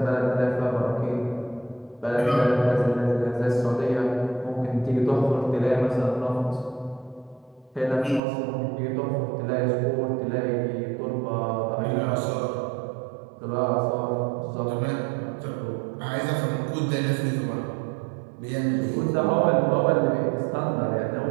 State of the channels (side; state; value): left; drops out; at 8.2 s